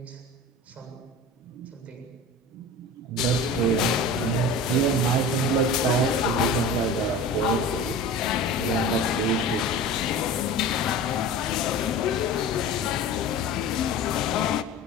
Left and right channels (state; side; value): normal; both; correlation 0.35